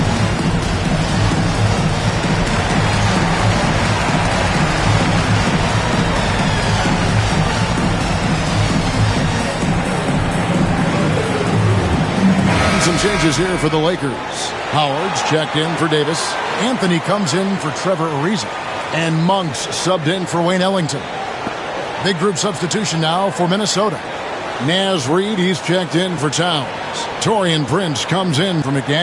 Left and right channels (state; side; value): identical; both; correlation 1.00